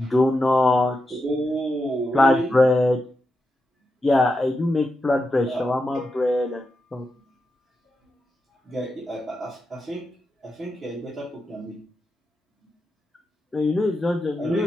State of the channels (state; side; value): normal; both; correlation 0.87